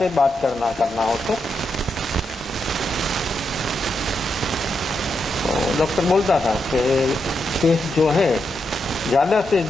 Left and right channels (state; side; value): normal; both; correlation 0.83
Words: बात करना हो तो डॉक्टर बोलता था कि केस जो है ज्यादा से